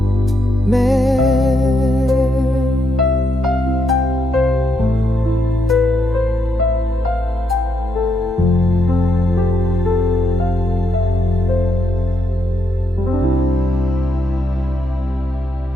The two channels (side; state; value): both; normal; correlation 0.79